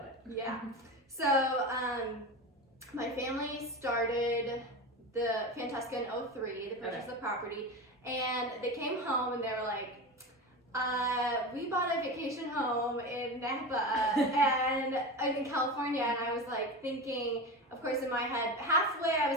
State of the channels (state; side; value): normal; both; correlation 0.25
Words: it. Yeah. So my family started the Fantesca in 2003. They purchased the property, and they came home and they were like, we bought a vacation home in Napa and in California, and I was like thinking, of course in my head, halfway I